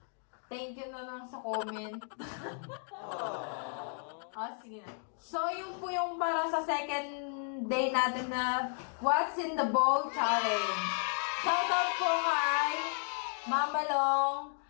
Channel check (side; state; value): right; silent; 55 dB below the other